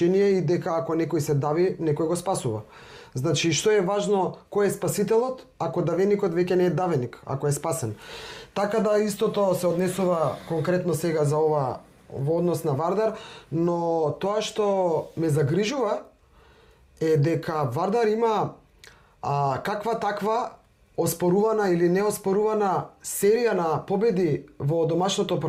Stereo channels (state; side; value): identical; both; correlation 1.00